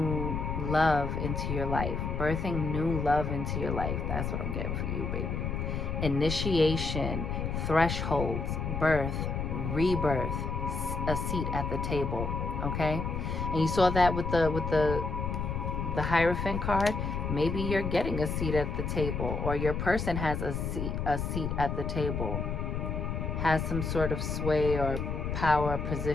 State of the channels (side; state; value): left; noise; rumble, 2 dB below the sound